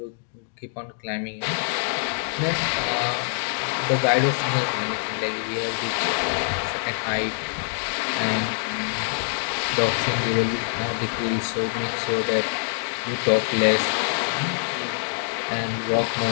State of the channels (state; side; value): silent; right; digital silence